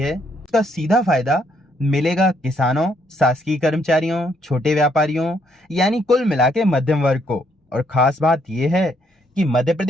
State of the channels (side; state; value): both; normal; correlation 0.71